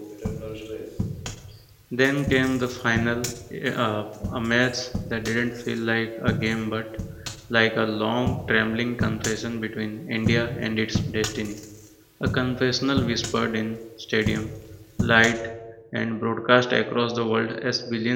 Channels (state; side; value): identical; both; correlation 1.00